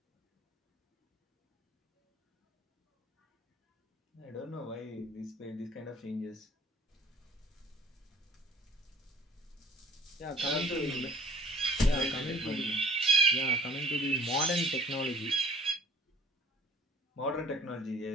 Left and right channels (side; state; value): both; normal; correlation 0.51